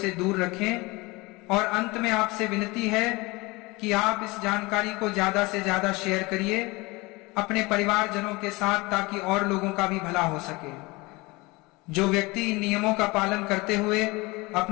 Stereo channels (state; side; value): quieter; right; 23.7 dB